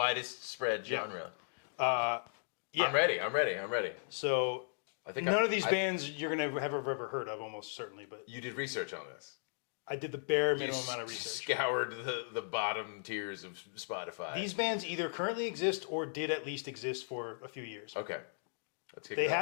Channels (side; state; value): right; silent; digital silence